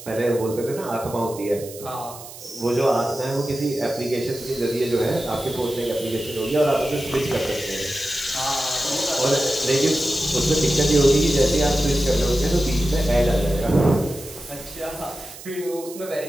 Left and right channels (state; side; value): noise; right; hiss, 15 dB below the sound